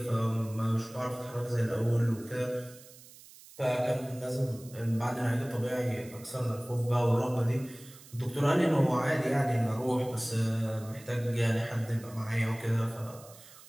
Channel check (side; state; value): right; noise; hiss, 21 dB below the sound